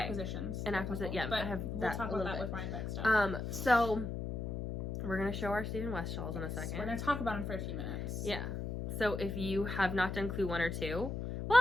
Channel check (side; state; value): left; noise; hum, 4 dB below the sound